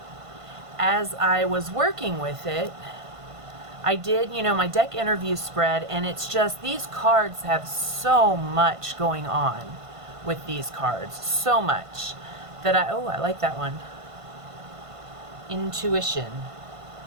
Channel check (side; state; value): left; late; 1.5 ms